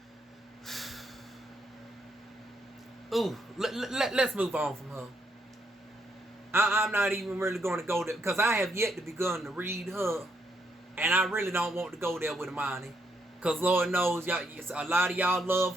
Let's move on from her. I'm not even really going to go there because I have yet to begun to read her, and I really don't want to go there with Amani, because Lord knows y'all, a lot of y'all love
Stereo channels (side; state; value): both; normal; correlation 0.76